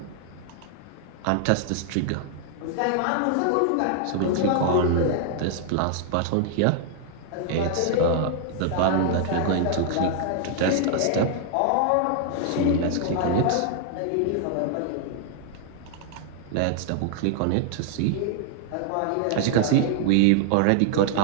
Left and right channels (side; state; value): both; different; correlation 0.00